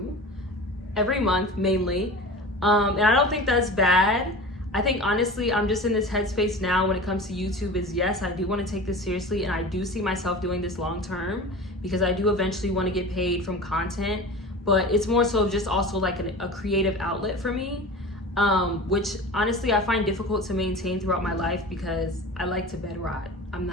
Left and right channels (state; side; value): normal; both; correlation 0.35